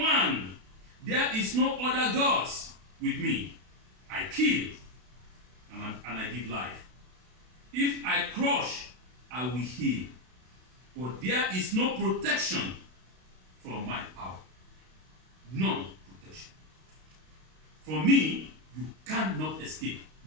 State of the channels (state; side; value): late; left; 32 ms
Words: one. There is no other gods with me. I kill and I give life. If I crush, I will heal. But there is no protection from my power. None protection. From me, you cannot escape.